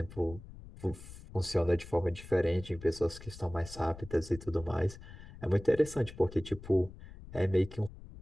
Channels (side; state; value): left; noise; rumble, 16 dB below the sound